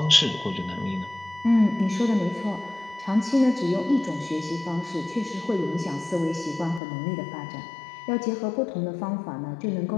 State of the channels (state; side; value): drops out; right; at 6.8 s